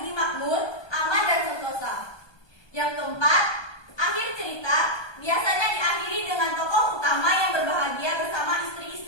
makmur, aman dan sentosa. Yang keempat, akhir cerita biasanya diakhiri dengan tokoh utama yang berbahagia bersama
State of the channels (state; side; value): late; right; 1.2 ms